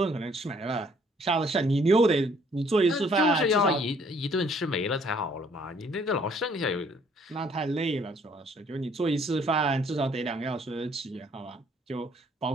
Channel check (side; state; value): both; normal; correlation 0.62